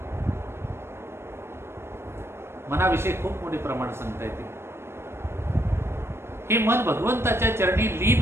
मनाविषयी खूप मोठे प्रमाण सांगता येते. हे मन भगवंताच्या चरणी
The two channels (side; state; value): left; late; 0.12 ms